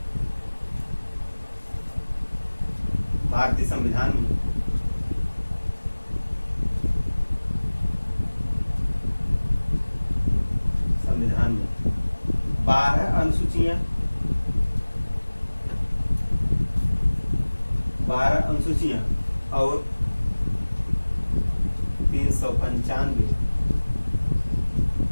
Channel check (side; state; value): both; inverted; correlation -1.00